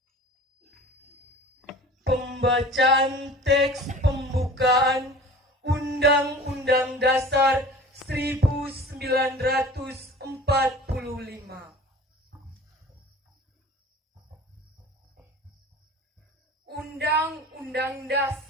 Pembacaan teks pembukaan Undang-Undang Dasar 1945. Undang-Undang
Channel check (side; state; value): both; normal; correlation 0.42